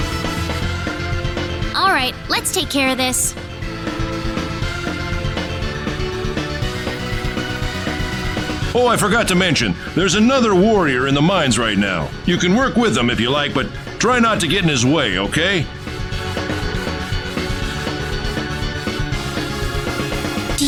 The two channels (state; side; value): identical; both; correlation 1.00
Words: All right, let's take care of this. Oh, I forgot to mention, there's another warrior in the mines right now. You can work with him if you like, but try not to get in his way, okay? Do